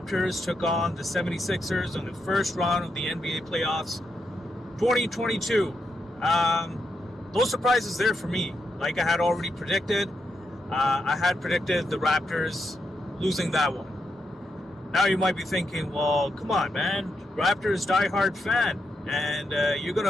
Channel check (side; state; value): both; normal; correlation 0.82